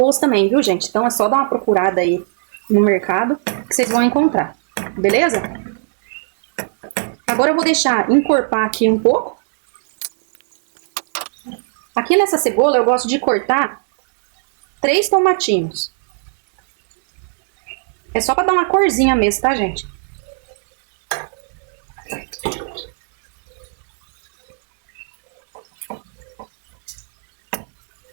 também, viu, gente? Então é só dar uma procurada aí no mercado que vocês vão encontrar. Beleza? Agora eu vou deixar encorpar aqui um pouco. Aqui nessa cebola eu gosto de cortar 3 tomatinhos. É só pra dar uma corzinha mesmo, tá, gente?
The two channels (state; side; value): silent; left; digital silence